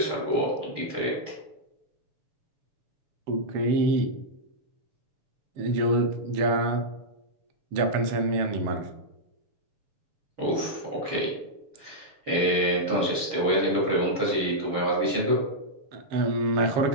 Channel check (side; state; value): left; late; 6.9 ms